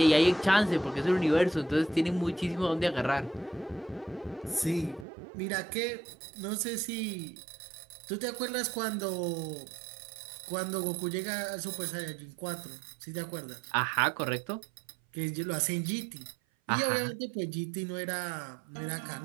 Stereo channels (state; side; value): drops out; left; at 5.1 s